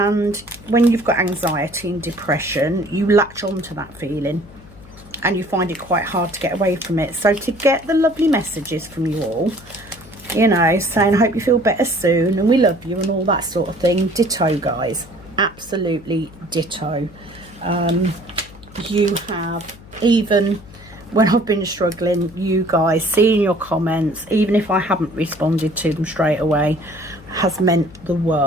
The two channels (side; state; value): left; noise; hum, 21 dB below the sound